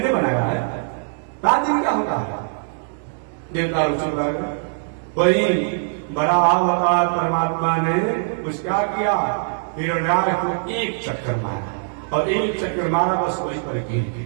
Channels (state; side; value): silent; left; digital silence